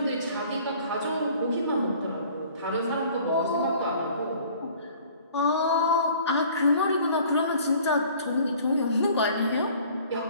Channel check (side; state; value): both; inverted; correlation -0.51